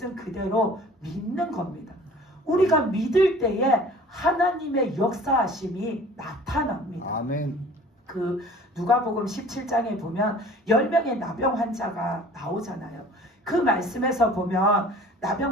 그대로 믿는 겁니다. 우리가 믿을 때에 하나님의 역사하심이 나타납니다. 아멘. 그 누가복음 17장에 보면 10명의 나병 환자가 나오잖아요. 그 말씀에서 보면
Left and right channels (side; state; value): both; normal; correlation 0.47